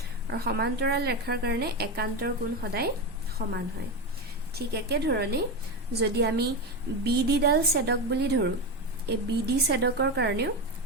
আৰু সমান্তৰাল ৰেখাৰ কাৰণে একান্তৰ কোণ সদায় সমান হয় ঠিক একে ধৰণে যদি আমি BD ডাল ছেদক বুলি ধৰো এই BD ছেদকৰ কাৰণেও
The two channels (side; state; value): both; normal; correlation 0.15